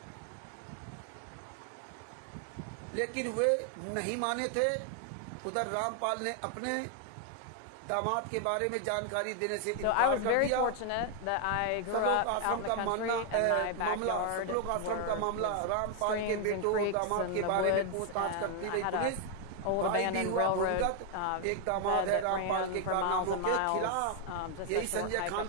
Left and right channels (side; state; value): both; different; correlation 0.00